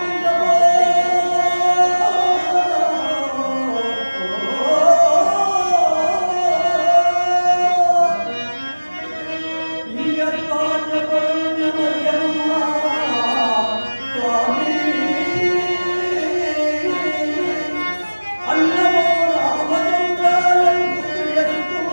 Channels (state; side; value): inverted; both; correlation -1.00